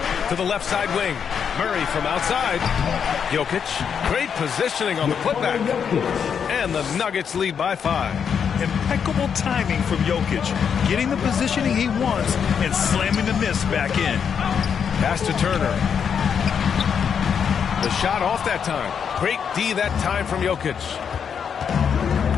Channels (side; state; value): right; quieter; 7.2 dB